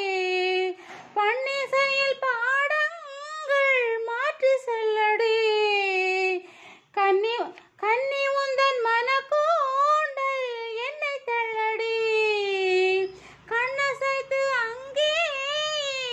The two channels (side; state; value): both; identical; correlation 1.00